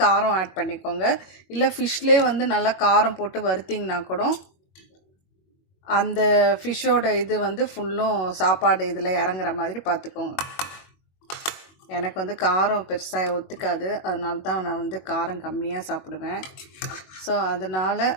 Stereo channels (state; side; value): late; right; 21 ms